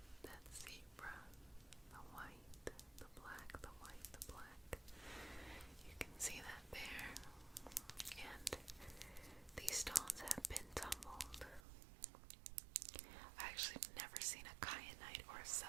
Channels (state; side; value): drops out; left; at 11.6 s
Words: that zebra, the white, the black, the white, the black. You can see that there. And these stones have been tumbled. I actually have never seen a kyanite or a